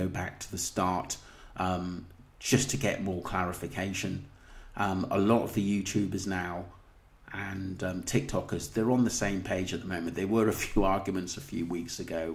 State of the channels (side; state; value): both; identical; correlation 1.00